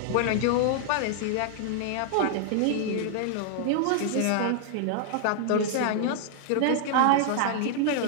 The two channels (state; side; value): different; both; correlation 0.00